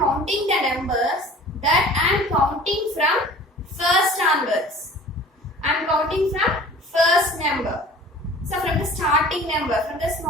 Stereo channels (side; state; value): both; normal; correlation 0.45